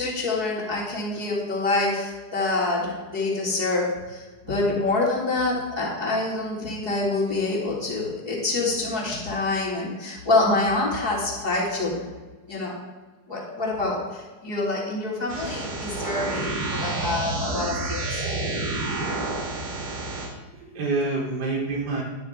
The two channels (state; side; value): late; left; 4.7 ms